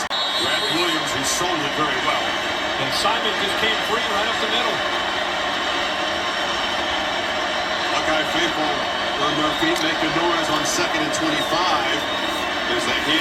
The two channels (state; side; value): identical; both; correlation 1.00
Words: Brad Williams who sold it very well. And Simon just came free right up the middle. Buckeye faithful on their feet, making noise on 2nd and 25. As they